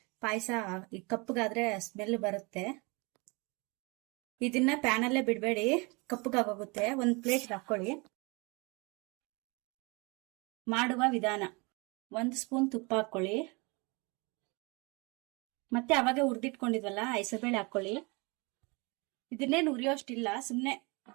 ಪಾಯಸ ಕಪ್ಪಗಾದ್ರೆ ಸ್ಮೆಲ್ ಬರುತ್ತೆ. ಇದನ್ನ ಪ್ಯಾನಲ್ಲೇ ಬಿಡಬೇಡಿ, ಕಪ್ಪಗಾಗೋಗುತ್ತೆ. ಒಂದು ಪ್ಲೇಟ್ ಹಾಕೊಳ್ಳಿ. ಮಾಡುವ ವಿಧಾನ: 1 ಸ್ಪೂನ್ ತುಪ್ಪ ಹಾಕೊಳ್ಳಿ. ಮತ್ತೆ ಅವಾಗ ಹುರಿದಿಟ್ಕೊಂಡಿದ್ವಲ್ಲ ಹೆಸರುಬೇಳೆ ಹಾಕೊಳ್ಳಿ. ಇದನ್ನೇನು ಹುರಿಯೋಷ್ಟಿಲ್ಲ, ಸುಮ್ಮನೆ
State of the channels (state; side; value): quieter; left; 28.4 dB